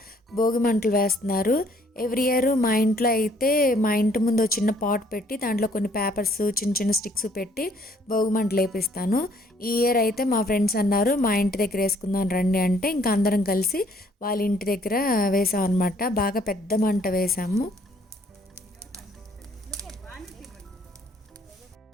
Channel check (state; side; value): normal; both; correlation 0.63